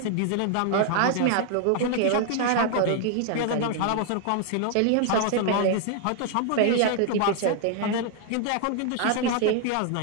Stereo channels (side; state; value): both; different; correlation 0.00